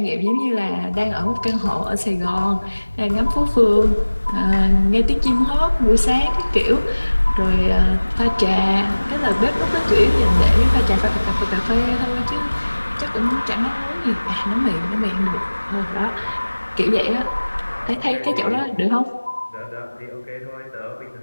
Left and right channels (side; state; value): both; inverted; correlation -1.00